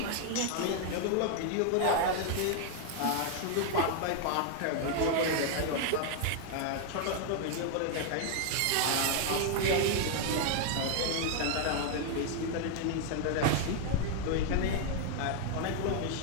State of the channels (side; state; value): both; different; correlation 0.00